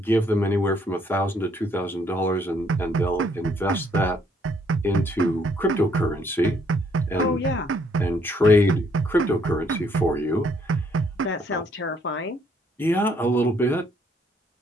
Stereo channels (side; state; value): both; normal; correlation 0.67